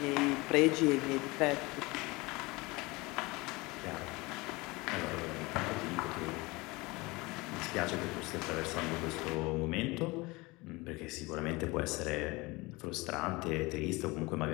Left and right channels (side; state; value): right; quieter; 23.5 dB